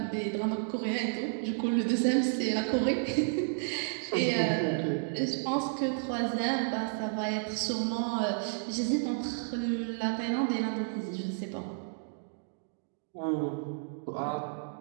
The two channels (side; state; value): left; silent; digital silence